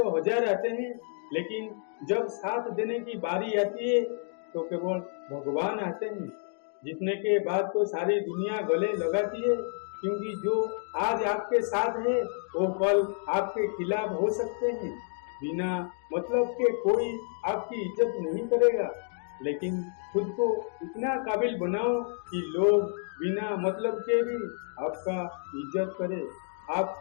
हजार आते हैं, लेकिन जब साथ देने की बारी आती है तो केवल भगवान आते हैं। जीतने के बाद तो सारी दुनिया गले लगाती है, क्योंकि जो आज आपके साथ है वो कल आपके खिलाफ हो सकते हैं। बिना मतलब के कोई आपकी इज्जत नहीं करेगा, लेकिन खुद को इतना काबिल बनाओ कि लोग बिना मतलब के भी आपका इज्जत करे।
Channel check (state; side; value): silent; right; 58 dB below the other